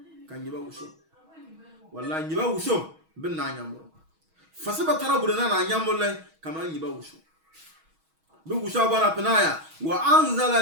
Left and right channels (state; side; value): late; left; 6.3 ms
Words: kan yiba wusu wallahi yiba wusu bin na nyambo fasiba tarabu na nyambo lai kama yiba wusu Bugu shabana penaya wa